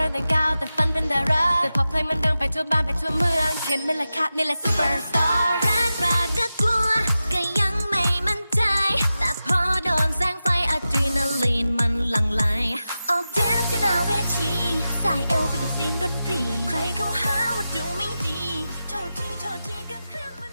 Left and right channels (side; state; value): both; inverted; correlation -0.92